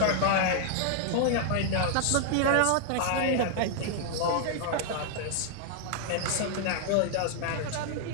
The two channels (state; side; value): different; both; correlation 0.00